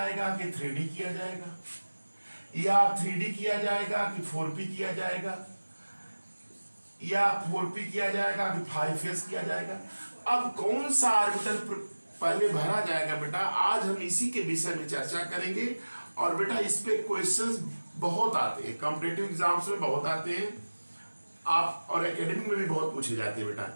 कि 3d किया जाएगा, या 3d किया जाएगा कि 4p किया जाएगा, या 4p किया जाएगा कि 5s किया जाएगा। अब कौन सा ऑर्बिटल पहले भरा जाएगा बेटा, आज हम इसी के विषय में चर्चा करेंगे। और बेटा इस पे क्वेश्चंस बहुत आते हैं, कॉम्पिटिटिव एग्जाम्स में बहुत आते हैं, आप और एकेडमिक में भी बहुत पूछे जाते हैं। बेटा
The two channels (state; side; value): inverted; both; correlation -1.00